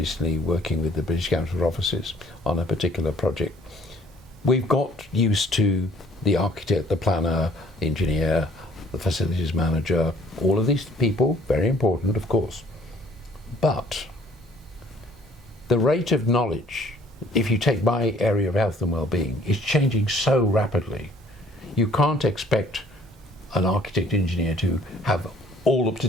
working with the British Council of Offices on a particular project. We've got used to the architect, the planner, the engineer, the facilities manager, all of these people, very important, of course. But the rate of knowledge, if you take my area of health and well-being, is changing so rapidly. You can't expect an architect engineer to have all up to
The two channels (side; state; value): both; normal; correlation 0.58